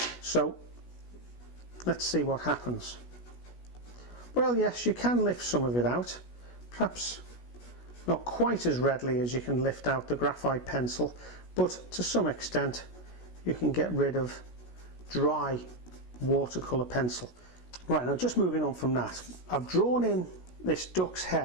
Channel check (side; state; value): right; late; 16 ms